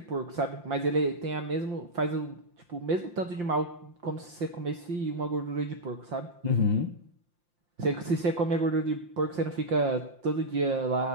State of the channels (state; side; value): late; left; 5.7 ms